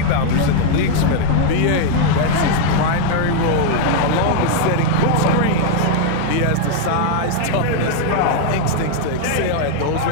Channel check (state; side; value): different; both; correlation 0.00